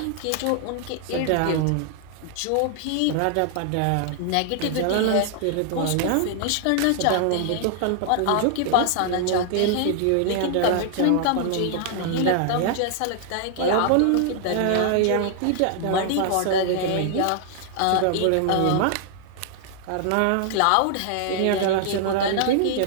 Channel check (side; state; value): both; different; correlation -0.01